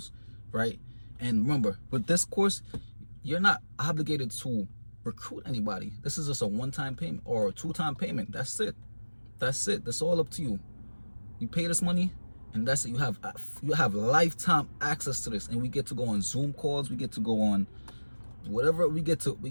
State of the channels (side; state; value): both; inverted; correlation -1.00